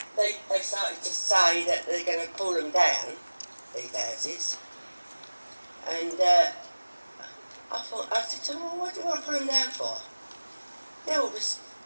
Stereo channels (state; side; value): inverted; both; correlation -1.00